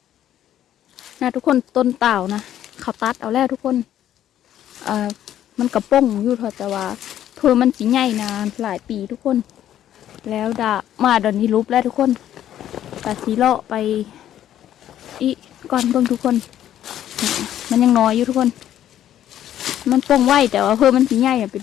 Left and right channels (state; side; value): quieter; right; 11.4 dB